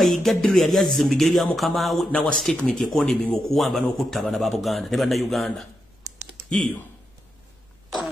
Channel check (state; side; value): normal; both; correlation 0.85